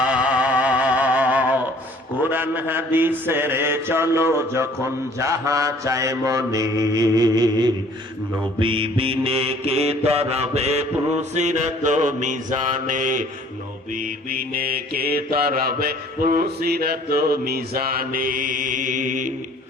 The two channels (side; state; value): both; normal; correlation 0.55